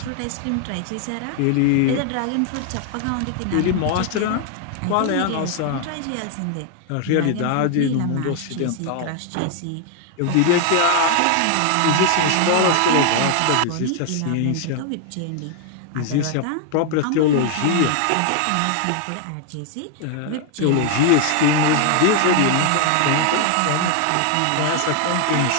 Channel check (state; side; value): different; both; correlation 0.00